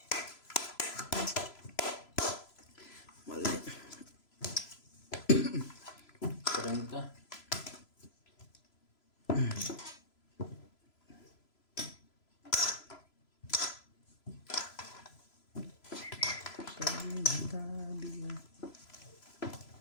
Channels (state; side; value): late; right; 3.0 ms